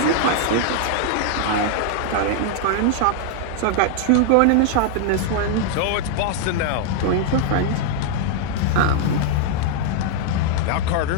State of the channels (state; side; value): different; both; correlation 0.00